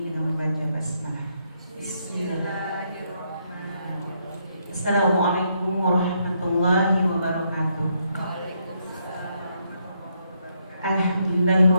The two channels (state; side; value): inverted; both; correlation -0.76